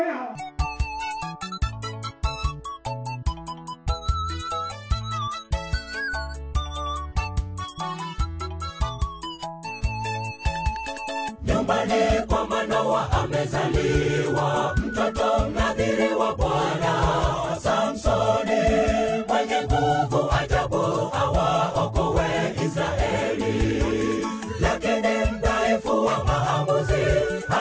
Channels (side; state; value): both; identical; correlation 1.00